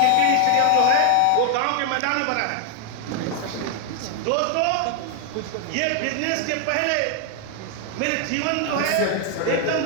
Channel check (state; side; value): different; both; correlation 0.00